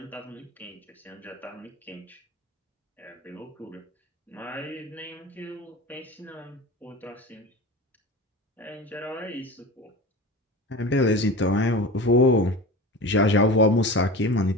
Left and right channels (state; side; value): normal; both; correlation 0.32